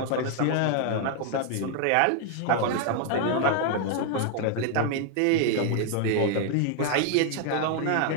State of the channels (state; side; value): different; both; correlation 0.00